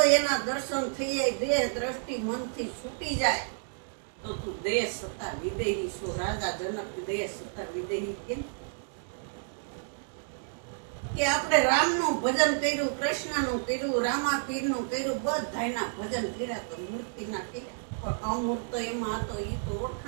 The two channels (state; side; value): silent; left; digital silence